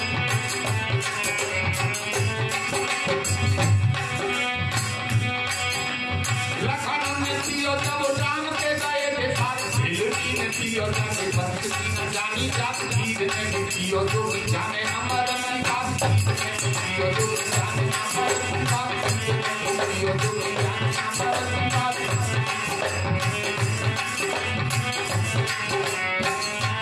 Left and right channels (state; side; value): identical; both; correlation 1.00